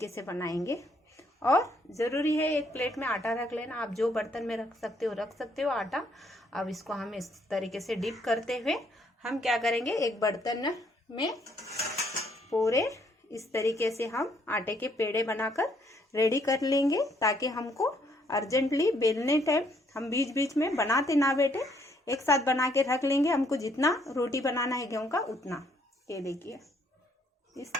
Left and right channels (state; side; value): normal; both; correlation 0.69